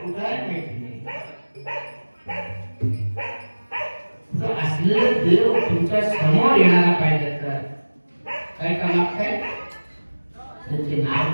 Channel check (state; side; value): inverted; both; correlation -1.00